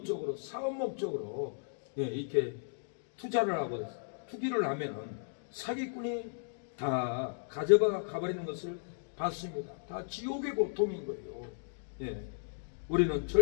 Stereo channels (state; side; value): silent; right; digital silence